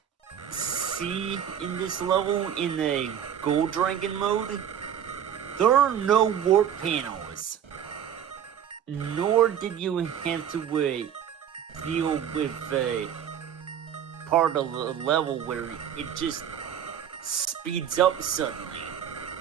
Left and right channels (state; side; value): quieter; left; 9.2 dB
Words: see in this level in the Gold Dragon mode, there are no warp panels. Nor did you have to deal with part of the level where it just speeds up suddenly.